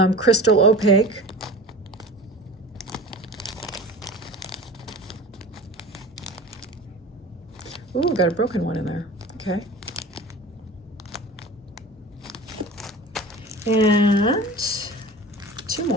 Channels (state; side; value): normal; both; correlation 0.37